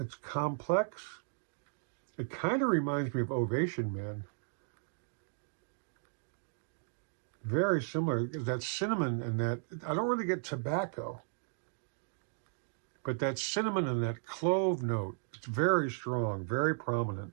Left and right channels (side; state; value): left; silent; digital silence